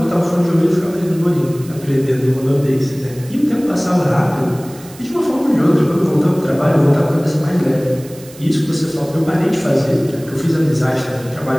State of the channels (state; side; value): noise; right; hiss, 21 dB below the sound